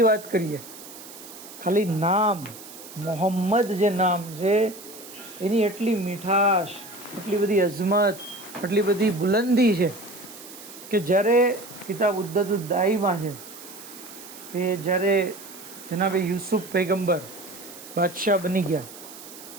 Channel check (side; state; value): right; noise; hiss, 16 dB below the sound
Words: વાત કરીએ, ખાલી નામ મોહમ્મદ જે નામ છે એની એટલી મીઠાશ, એટલી બધી અઝમત, એટલી બધી બુલંદી છે કે જ્યારે કિતાબ ઉદ્દતુદ દાઈમાં છે કે જ્યારે જનાબે યુસુફ પૈગંબર બાદશાહ બની ગયા,